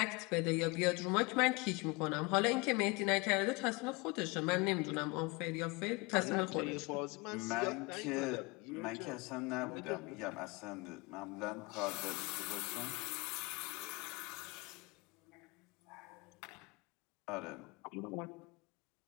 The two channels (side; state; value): right; quieter; 26.5 dB